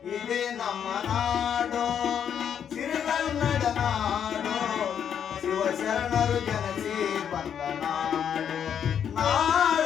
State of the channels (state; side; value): quieter; right; 8.4 dB